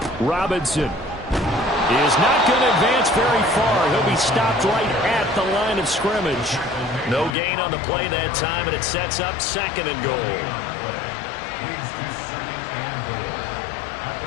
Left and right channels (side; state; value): right; drops out; at 7.4 s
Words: Robinson is not going to advance very far. He'll be stopped right at the line of scrimmage. No gain on the play that time, and it sets up 2nd and goal. Leads to 2nd and goal at